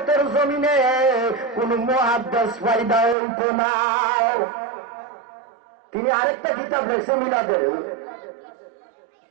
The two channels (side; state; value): left; drops out; at 3.2 s